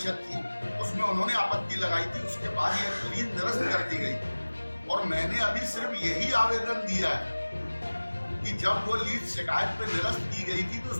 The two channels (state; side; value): inverted; both; correlation -1.00